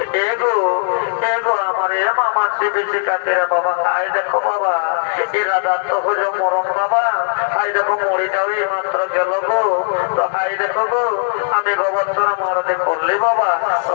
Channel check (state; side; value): silent; right; digital silence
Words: এগো এগো আমার এ মামার বেশি কাছে বাবা। হাই দেখো বাবা, এই রাজার তো হইল মরণ বাবা। হাই দেখো মরিটাও এই মাত্র গেল গো। তো হাই দেখো গো, আমি গোবর্ধনা মারতে করলি বাবা। তো